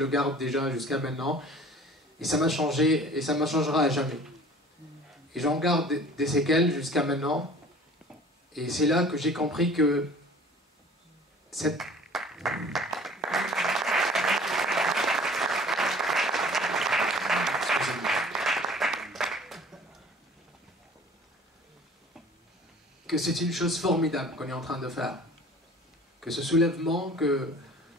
garde déjà jusqu'à maintenant, et ça m'a changé, et ça me changera à jamais. Et j'en garde des séquelles jusqu'à maintenant, et c'est là que j'ai compris que que c'est une chose formidable qu'on est en train de faire. Que ce soulèvement,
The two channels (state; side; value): normal; both; correlation 0.48